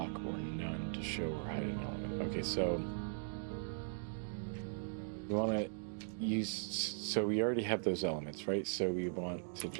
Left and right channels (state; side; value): silent; left; digital silence